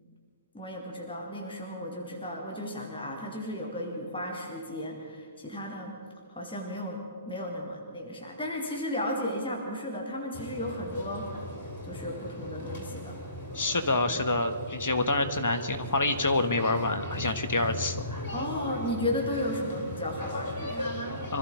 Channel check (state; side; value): inverted; both; correlation -0.49